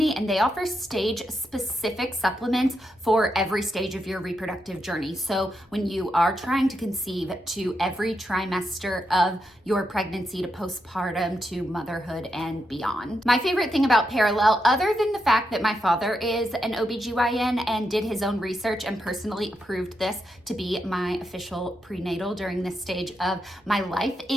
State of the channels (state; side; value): normal; both; correlation 0.83